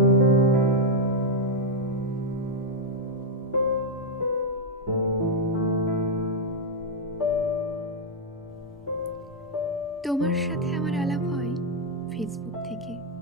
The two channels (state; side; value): normal; both; correlation -0.01